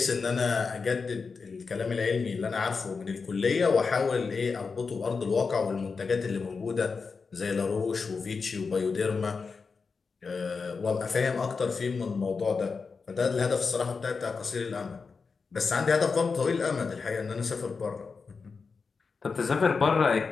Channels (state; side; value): quieter; right; 4.9 dB